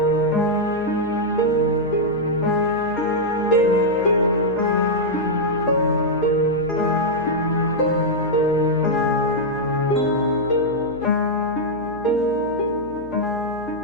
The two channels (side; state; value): right; noise; hum, 17 dB below the sound